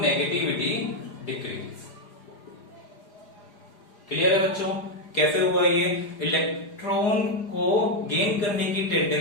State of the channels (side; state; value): right; late; 4.9 ms